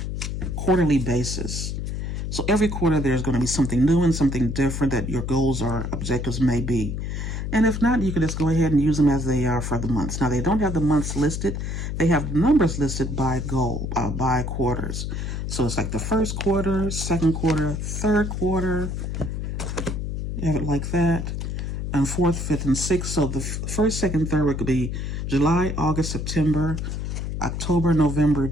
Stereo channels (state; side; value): noise; left; hum, 3 dB below the sound